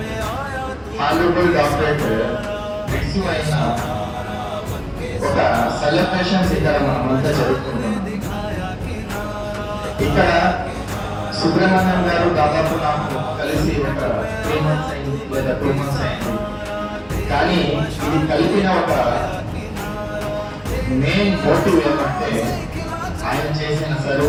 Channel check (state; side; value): identical; both; correlation 1.00